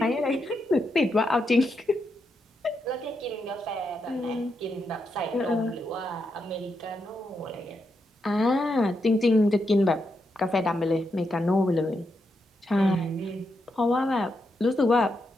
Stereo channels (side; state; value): both; normal; correlation 0.83